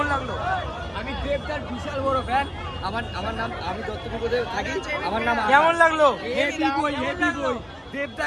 লাগলো? আমি দেবদার বিশাল বড় ফ্যান। আমার নাম, আমি দত্তপুকুরে থাকি। আমার নাম আকাশ। কেমন লাগলো? হেভি বই, হেভি বই।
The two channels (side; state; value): both; identical; correlation 1.00